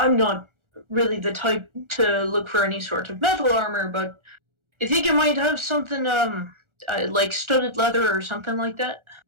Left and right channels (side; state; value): left; late; 1.4 ms